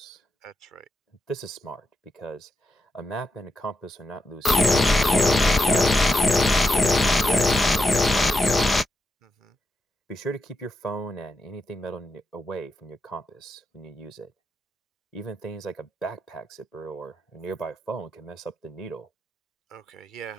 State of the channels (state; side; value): normal; both; correlation 0.87